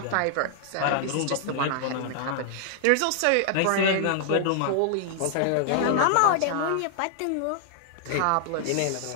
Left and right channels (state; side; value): different; both; correlation -0.01